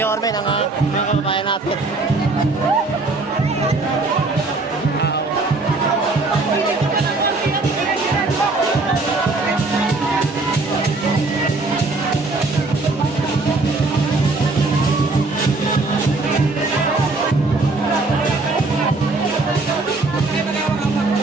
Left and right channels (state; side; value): quieter; left; 3.4 dB